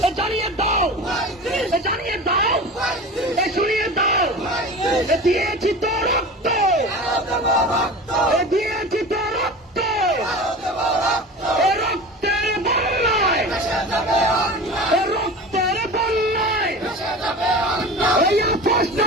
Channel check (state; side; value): normal; both; correlation 0.33